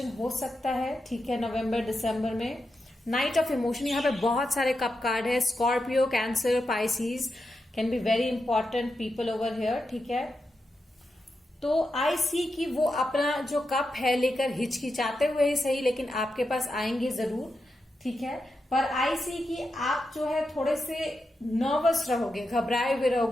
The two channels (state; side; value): normal; both; correlation 0.87